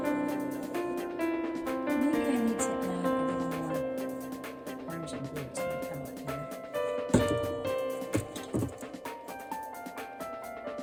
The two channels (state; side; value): identical; both; correlation 1.00